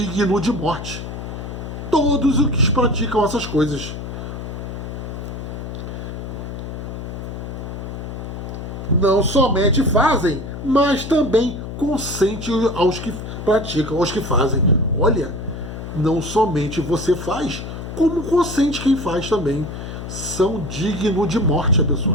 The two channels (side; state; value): left; noise; hum, 8 dB below the sound